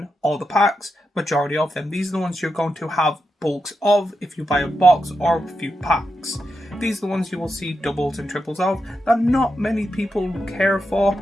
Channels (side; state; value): both; normal; correlation 0.86